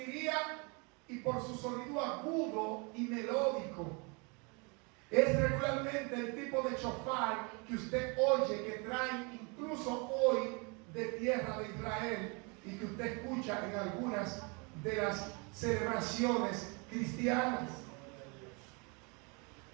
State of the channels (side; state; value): left; quieter; 31.8 dB